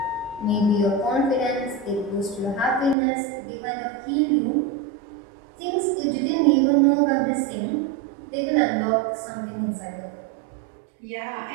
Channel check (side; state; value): left; drops out; at 3.0 s